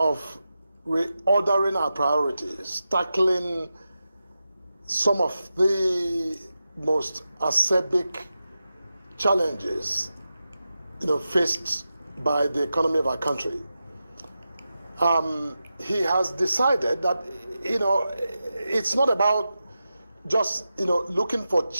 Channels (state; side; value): inverted; both; correlation -0.91